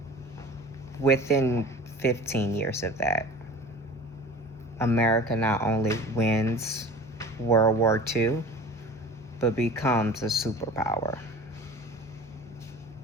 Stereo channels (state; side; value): normal; both; correlation 0.40